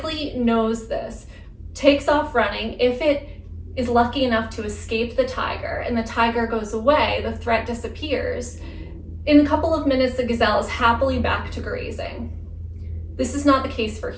knows this, takes off running. If it is lucky enough to escape the tiger and the tiger goes away, the threat disappears. In a couple of minutes, the gazelle is happily back to grazing. This is not the case for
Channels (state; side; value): identical; both; correlation 1.00